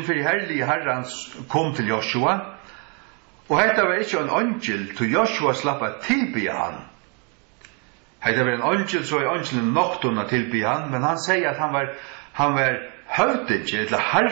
for herlige herrans kom til Joshua, og hetta var ikkje en angel til Joshua slappa tilbya han. Hetta var en angel, så er angelen noktona tilbya han, men han sier at han var høvdingen, eller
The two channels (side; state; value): left; quieter; 36.0 dB